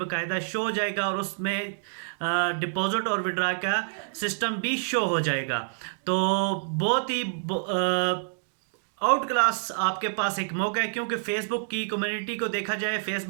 शो हो जाएगा, और उसमें डिपॉजिट और विड्रा का सिस्टम भी शो हो जाएगा। तो बहुत ही आउट क्लास आपके पास एक मौका है, क्योंकि फेसबुक की कम्युनिटी को देखा जाए,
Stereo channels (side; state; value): left; silent; digital silence